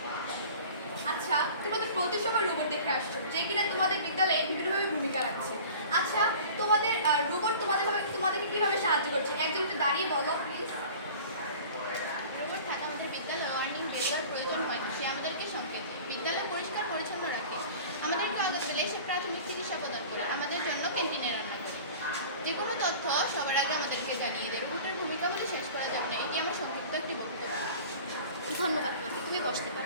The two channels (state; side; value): inverted; both; correlation -0.42